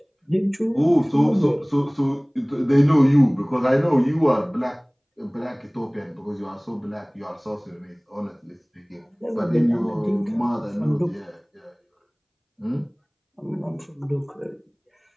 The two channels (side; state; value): both; identical; correlation 1.00